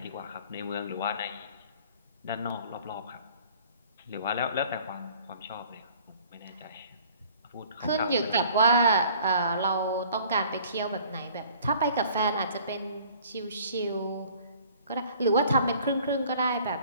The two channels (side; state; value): both; inverted; correlation -0.52